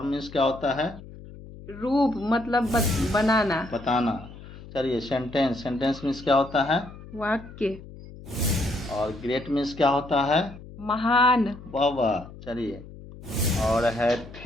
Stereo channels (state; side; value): noise; left; hum, 16 dB below the sound